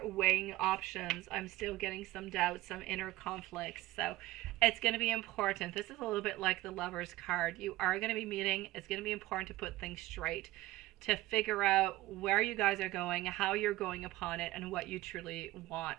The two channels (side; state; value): left; quieter; 17.3 dB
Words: weighing options. I'm still getting some doubts, some inner conflicts. So it's going to be important. This is a little bit like the Lover's card. You are going to be meeting. It's going to be important to put things straight, to figure out where you guys are going, how you're going upon it, and what you truly want.